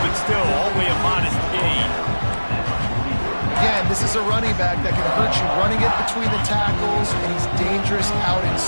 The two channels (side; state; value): both; inverted; correlation -1.00